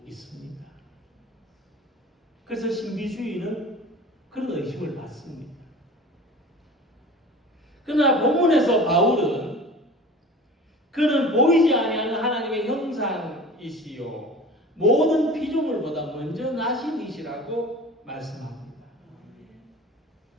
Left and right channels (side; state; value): both; normal; correlation 0.39